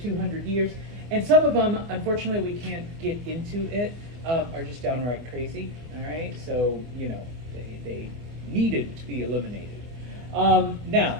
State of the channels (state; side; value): late; left; 25 ms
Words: 200 years, and some of them, unfortunately, we can't get into it, are just downright crazy, all right? So, they needed to be eliminated.